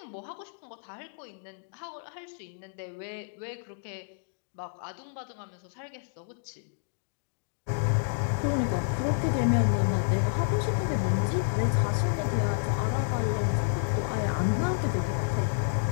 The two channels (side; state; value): right; silent; digital silence